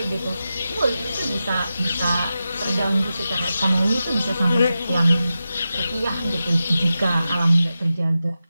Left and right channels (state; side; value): inverted; both; correlation -0.92